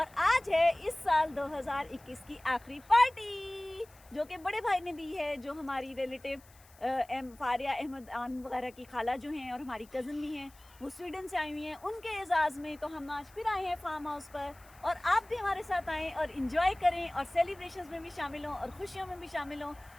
आज है इस साल 2021 की आखिरी पार्टी जो कि बड़े भाई ने दी है, जो हमारी रिलेटिव फारिया अहमद आन वगैरह की खाला जो हैं और हमारी कज़न भी हैं, वो स्वीडन से आई हुई हैं। उनके एजाज़ में तो हम आज फिर आए हैं फार्म हाउस पर, और आप भी हमारे साथ आएँ और इन्जॉय करें और सेलिब्रेशंस में भी शामिल हों और खुशियों में भी शामिल हों।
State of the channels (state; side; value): noise; left; hiss, 26 dB below the sound